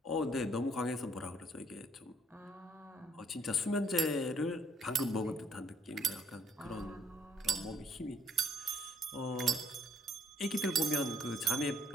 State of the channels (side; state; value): both; normal; correlation 0.66